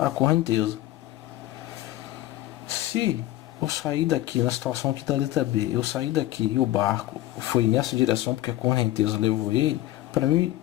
a correnteza. Se eu sair daqui, na situação aqui da letra B, eu sair daqui e o barco foi nessa direção porque a correnteza levou ele, para mim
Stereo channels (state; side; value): quieter; right; 15.3 dB